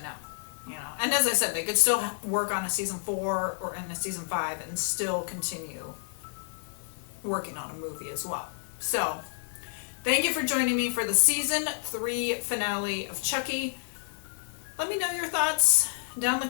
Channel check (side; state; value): right; silent; digital silence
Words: know. You know, and as I said, they could still work on a season 4 or in a season 5 and still continue working on a movie as well. So, thank you for joining me for the season 3 finale of Chucky. Let me know your thoughts down in